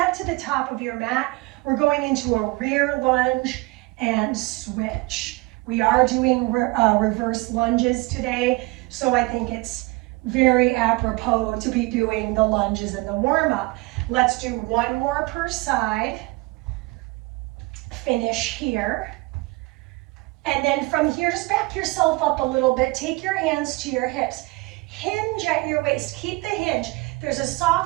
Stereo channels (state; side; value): quieter; left; 23.8 dB